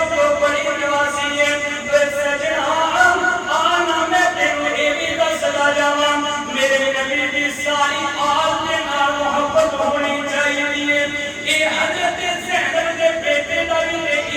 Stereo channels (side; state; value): both; identical; correlation 1.00